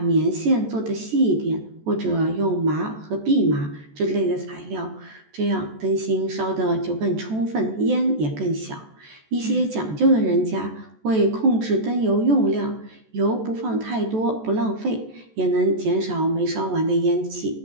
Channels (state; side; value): late; left; 14 ms